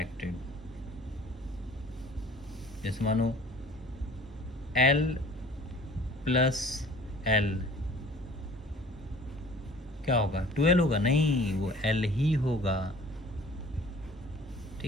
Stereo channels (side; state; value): both; normal; correlation 0.49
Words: जैसे मानो L प्लस L क्या होगा, 12 होगा, नहीं वो L ही होगा,